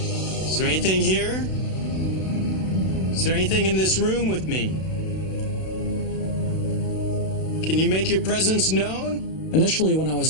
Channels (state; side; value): late; right; 32 ms